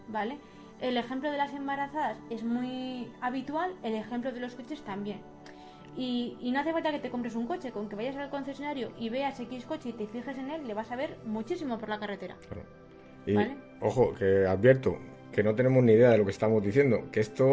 ¿vale? El ejemplo de las embarazadas es muy habitual, el ejemplo de los coches también. Y no hace falta que te compres un coche, con que vayas al concesionario y veas X coche y te fijes en él, le vas a ver muchísimo por la carretera. Claro. Y, ¿vale? ojo, que advierto que no tenemos ni idea de lo que estamos diciendo, que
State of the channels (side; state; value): both; identical; correlation 1.00